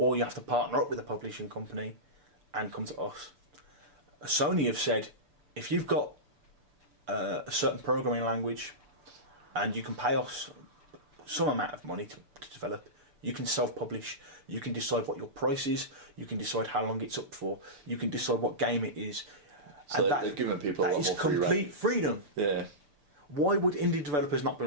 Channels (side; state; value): left; late; 6.8 ms